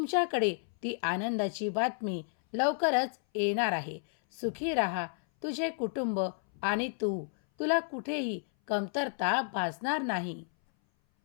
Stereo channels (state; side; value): silent; right; 57 dB below the other